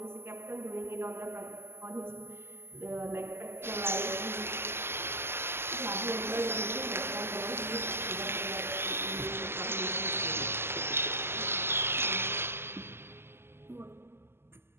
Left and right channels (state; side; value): late; left; 0.12 ms